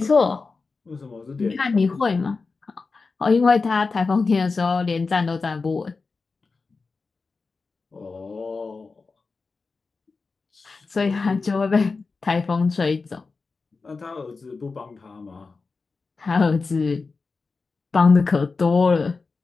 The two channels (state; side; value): quieter; right; 4.3 dB